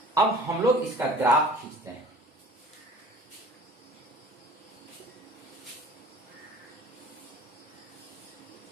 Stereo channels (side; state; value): both; normal; correlation 0.46